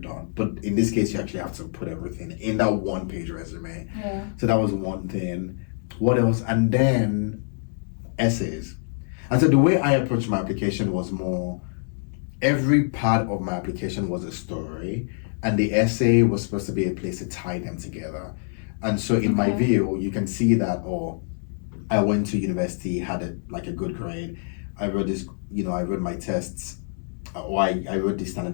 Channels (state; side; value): silent; right; digital silence